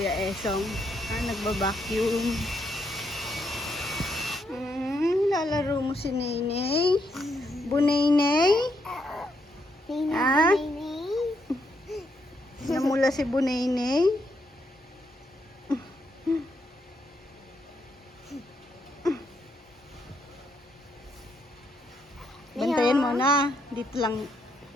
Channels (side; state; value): both; normal; correlation 0.77